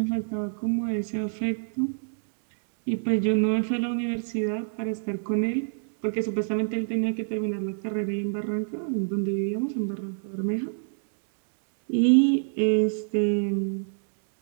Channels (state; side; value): silent; left; digital silence